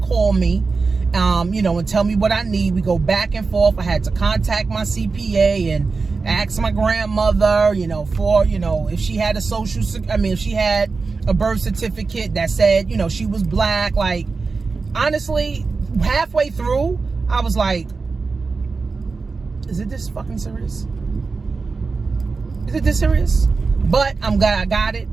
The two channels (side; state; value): left; quieter; 4.3 dB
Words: call me, and tell me what I need. We go back and forth. I had to contact my CPA and ask my grandmother, if she had if she had a birth certificate that said, she was black. Like, honestly, halfway through, I was like, is it this fucking serious? Is it this serious? But I'm glad I got it.